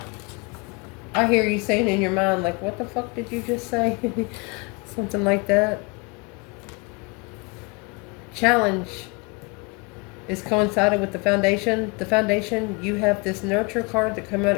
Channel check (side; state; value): right; quieter; 29.2 dB